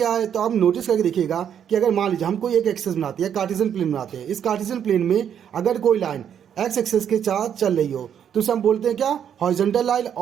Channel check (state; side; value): quieter; left; 8.8 dB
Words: है, तो आप नोटिस करके देखिएगा कि अगर मान लीजिए हम कोई एक एक्सेस बनाते हैं, कार्टेशियन प्लेन बनाते हैं। इस कार्टेशियन प्लेन में अगर कोई लाइन एक्स एक्सेस के साथ चल रही हो तो उसे हम बोलते हैं क्या, हॉरिजॉन्टल लाइन।